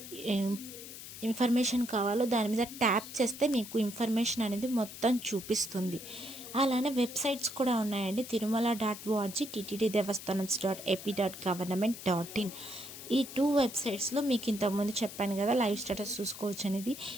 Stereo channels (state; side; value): noise; left; hiss, 12 dB below the sound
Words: ఇన్ఫర్మేషన్ కావాలో దాని మీద ట్యాప్ చేస్తే మీకు ఇన్ఫర్మేషన్ అనేది మొత్తం చూపిస్తుంది. అలానే వెబ్సైట్స్ కూడా ఉన్నాయండి. తిరుమల.org, ttddevastanams.ap.government.in. ఈ 2 వెబ్సైట్స్లో మీకు ఇంతకుముందు చెప్పాను కదా లైవ్ స్టేటస్ చూసుకోవచ్చు అనేది.